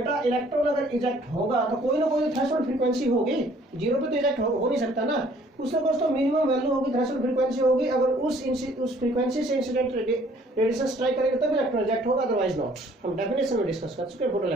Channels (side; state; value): both; normal; correlation 0.58